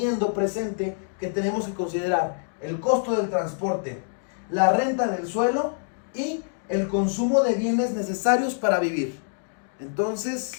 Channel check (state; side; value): silent; right; digital silence